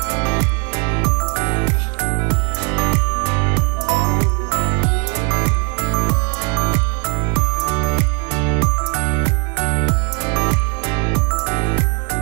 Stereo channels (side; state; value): left; quieter; 33.5 dB